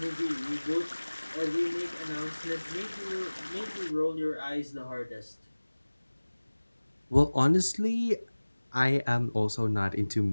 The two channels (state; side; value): inverted; both; correlation -1.00